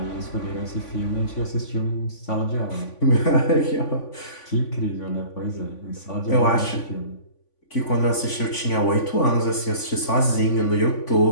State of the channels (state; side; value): late; right; 3.5 ms